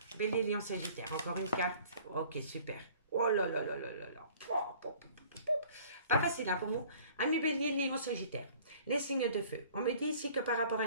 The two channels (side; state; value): both; inverted; correlation -0.52